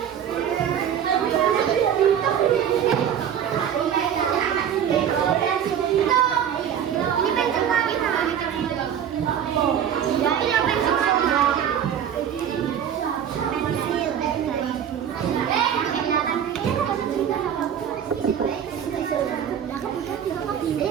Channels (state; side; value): quieter; left; 9.0 dB